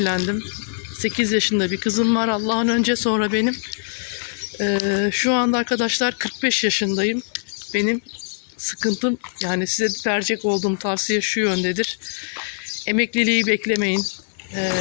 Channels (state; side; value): silent; right; digital silence